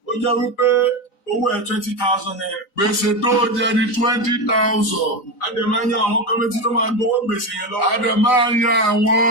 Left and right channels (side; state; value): right; late; 3.9 ms